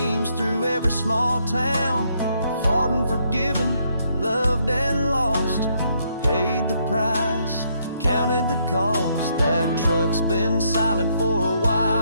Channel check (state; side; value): inverted; both; correlation -0.73